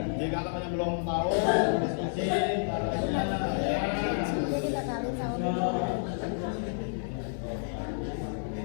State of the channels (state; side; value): silent; right; digital silence